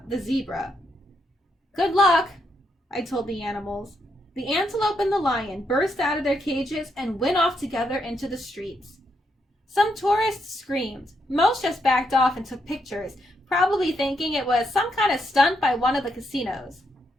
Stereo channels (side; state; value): both; normal; correlation 0.79